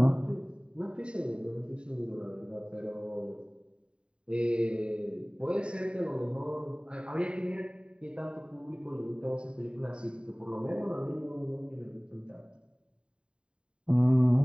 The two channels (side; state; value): left; late; 0.053 ms